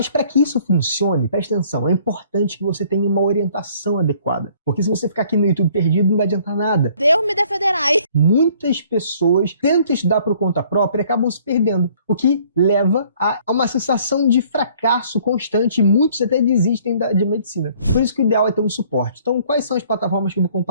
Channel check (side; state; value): both; inverted; correlation -0.59